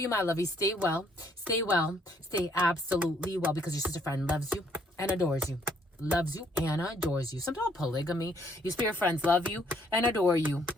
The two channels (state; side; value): normal; both; correlation 0.67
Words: my lovies. Stay well. Stay well. Stay absolutely well, because your sister friend loves you and adores you. Loves you and adores you. Something about polygamy. Your spirit friends love you and adore you.